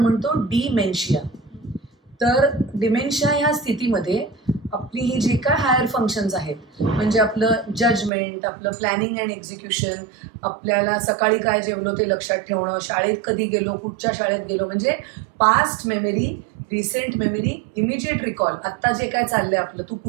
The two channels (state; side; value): drops out; left; at 8.1 s